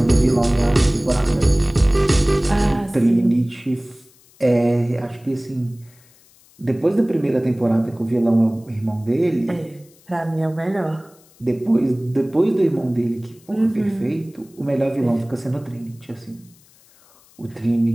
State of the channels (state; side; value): noise; left; hiss, 29 dB below the sound